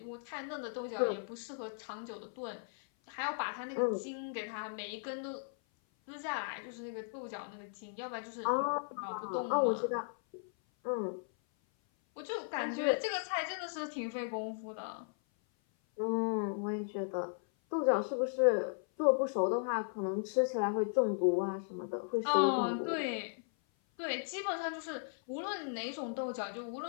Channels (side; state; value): right; silent; 53 dB below the other